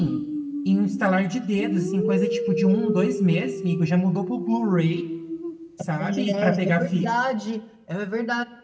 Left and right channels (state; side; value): identical; both; correlation 1.00